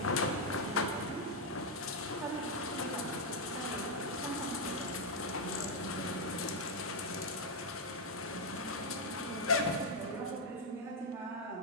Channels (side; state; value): both; normal; correlation 0.01